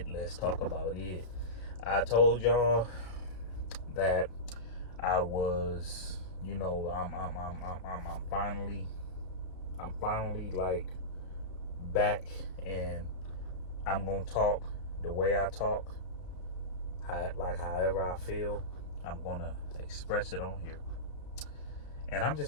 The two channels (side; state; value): right; late; 33 ms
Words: Let's talk about it. I told y'all that I was, I'm finally like back, and I'm gonna talk the way I talk, however I feel. I'm gonna express it on here, and I'm just